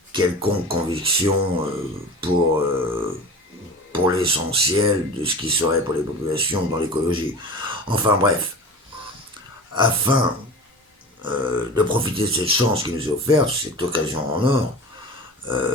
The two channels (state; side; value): normal; both; correlation 0.35